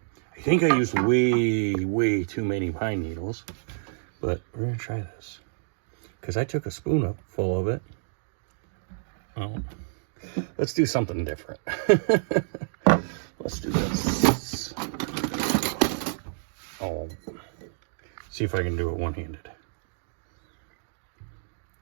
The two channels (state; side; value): silent; left; digital silence